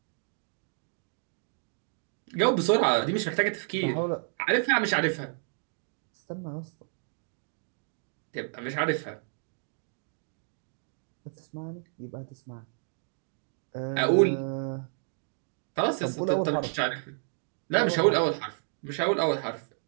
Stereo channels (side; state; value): left; silent; 56 dB below the other